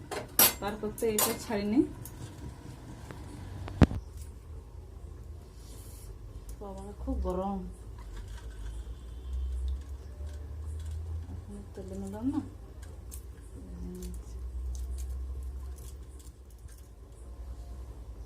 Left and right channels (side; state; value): both; identical; correlation 1.00